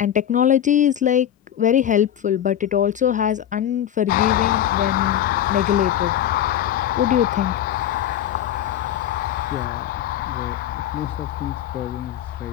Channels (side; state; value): right; quieter; 10.8 dB